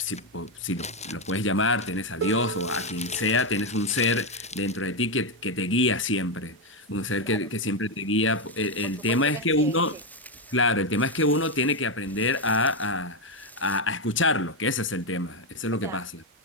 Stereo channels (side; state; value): both; normal; correlation 0.06